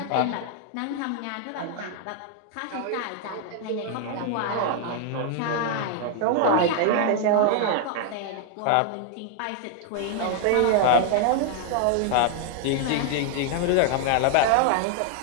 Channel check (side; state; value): both; different; correlation 0.00